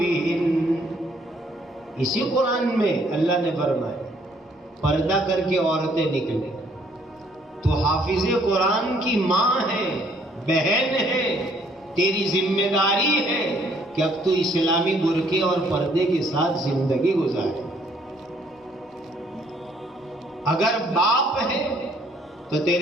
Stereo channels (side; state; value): both; normal; correlation 0.64